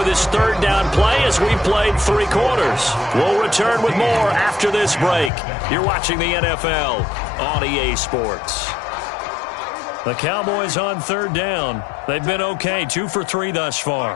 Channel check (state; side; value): drops out; right; at 5.3 s